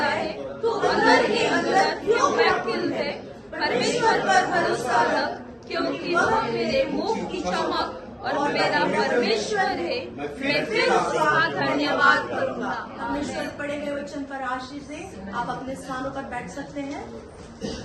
है? तू अंदर ही अंदर क्यों व्याकुल है? परमेश्वर पर भरोसा रख, क्योंकि वह मेरे मुख की चमक और मेरा परमेश्वर है। मैं फिर उसका धन्यवाद करूंगा। परमेश्वर पढ़े गए वचन पर आशीष से आप अपने स्थानों पर बैठ सकते हैं।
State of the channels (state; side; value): identical; both; correlation 1.00